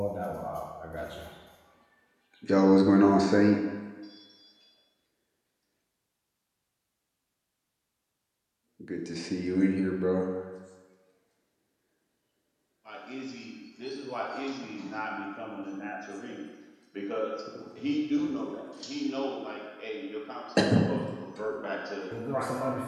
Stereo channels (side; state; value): both; identical; correlation 1.00